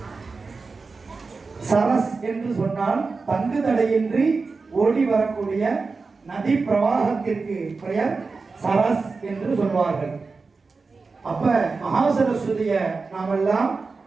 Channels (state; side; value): quieter; left; 4.3 dB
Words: சரஸ் என்று சொன்னால் தங்கு தடையின்றி ஓடி வரக்கூடிய நதி பிரவாகத்திற்கு பெயர் சரஸ் என்று சொல்வார்கள். அப்ப மகாசரஸ்வதிய நாமெல்லாம்